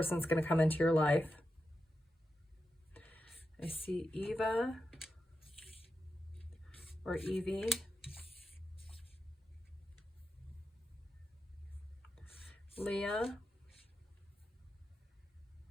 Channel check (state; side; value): normal; both; correlation 0.89